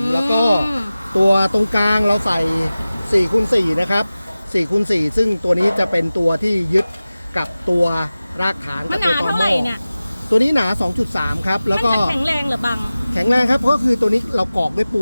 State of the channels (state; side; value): inverted; both; correlation -0.96